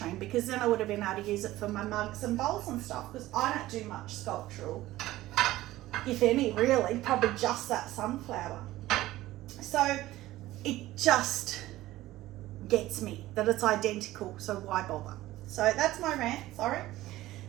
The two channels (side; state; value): left; quieter; 16.3 dB